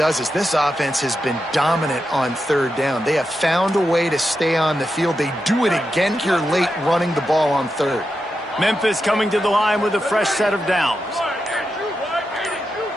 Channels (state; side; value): normal; both; correlation 0.88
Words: is this offense has been dominant on 3rd down. They have found a way to stay on the field. They do it again here late running the ball on 3rd. Memphis coming to the line with a fresh set of downs.